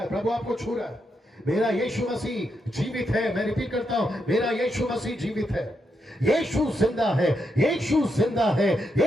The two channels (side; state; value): both; normal; correlation 0.82